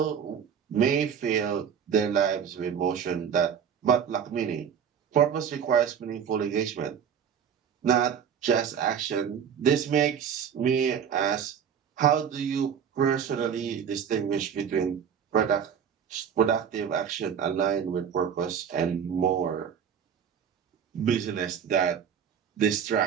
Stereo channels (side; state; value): left; quieter; 7.8 dB